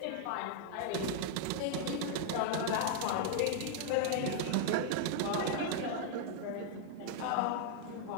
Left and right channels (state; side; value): different; both; correlation -0.01